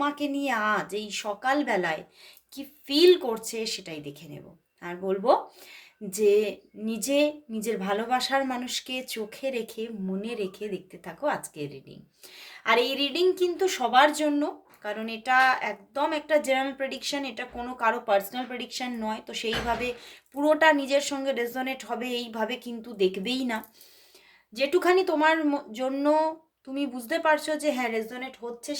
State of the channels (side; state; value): both; identical; correlation 1.00